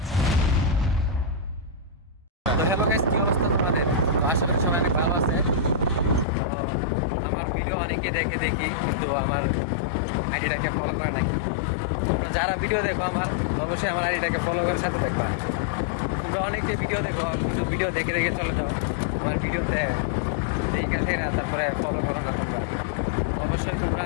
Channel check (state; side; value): drops out; right; at 6.2 s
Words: তো হ্যালো গাইস, কি অবস্থা তোমাদের? তো আশা করি সবাই অনেক ভালো আছে। তো আমার ভিডিও অনেকে দেখি, কিন্তু আমার আইডিটাকে ফলো করে নাই। তোমরা যারা ভিডিও দেখো আমার, অবশ্যই আমার আইডিটাকে ফলো করে সাথে থাকবা। তোমরা অনেকে ভিডিও দেখো, কিন্তু ভিডিও দেখে চলে যাও, আমার ভিডিওতে দেখে আসে না, তারপরে ফলো করো না। তোমরা অবশ্যই তোমরা